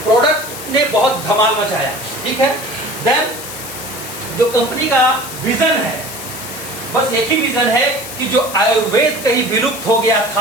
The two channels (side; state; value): left; noise; hiss, 11 dB below the sound